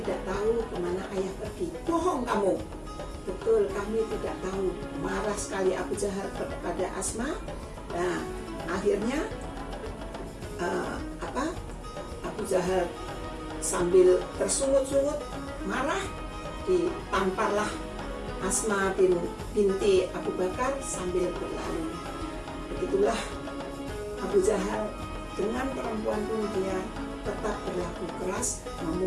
tahu kemana ayah pergi. Bohong kamu. Betul, kami tidak tahu. Marah sekali Abu Jahal kepada Asma. Nah, akhirnya Abu Jahal sambil tersungut-sungut marah, ditamparlah Asma binti Abu Bakar sambil berlari. Begitulah Abu Jahal dengan perempuan pun dia tetap berlaku keras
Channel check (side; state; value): both; identical; correlation 1.00